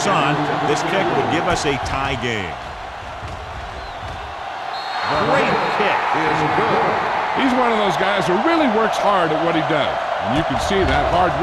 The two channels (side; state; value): both; identical; correlation 1.00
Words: on. This kick would give us a tie game. Great kick. He's one of those guys who really works hard at what he does. And you can see that hard